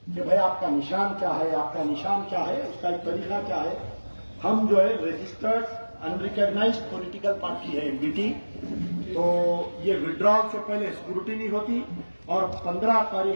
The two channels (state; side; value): inverted; both; correlation -1.00